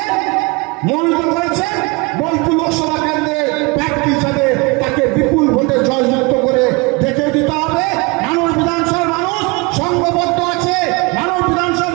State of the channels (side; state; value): left; quieter; 26.9 dB